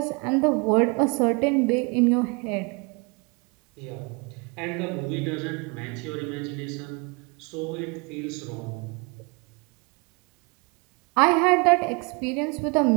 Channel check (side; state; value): left; quieter; 31.1 dB